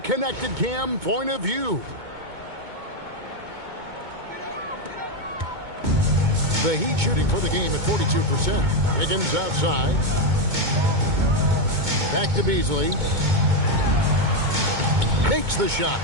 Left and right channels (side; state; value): left; late; 2.2 ms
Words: Cam point of view. The Heat shooting for the game at 42%. Wiggins outside. Back to Beasley. Makes the shot.